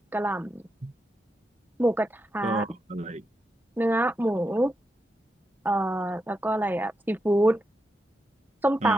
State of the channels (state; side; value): normal; both; correlation 0.85